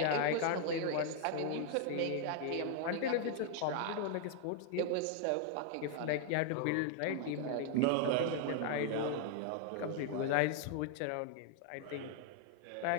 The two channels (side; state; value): both; different; correlation 0.00